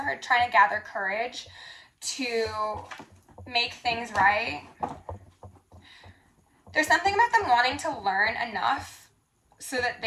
heard trying to gather courage to make things right. There's something about them wanting to learn enough so that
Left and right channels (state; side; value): identical; both; correlation 1.00